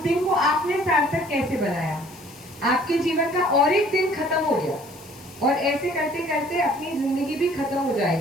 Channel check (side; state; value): left; noise; hiss, 21 dB below the sound